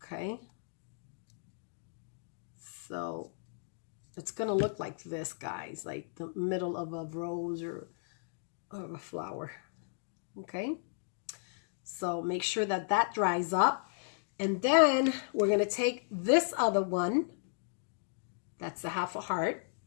Okay, so it's gonna look like this, guys, like the middle of a rose or a flower. Okay, so make sure that that dries up, and then we're going to take this other one, that's the half a heart,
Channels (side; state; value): right; silent; digital silence